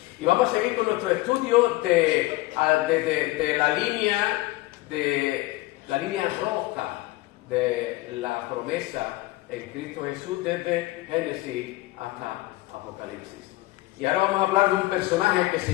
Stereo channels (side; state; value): right; quieter; 19.1 dB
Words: Y vamos a seguir con nuestro estudio de la línea roja de la promesa en Cristo Jesús desde Génesis hasta Apocalipsis. Y ahora vamos a hablar de un personaje que se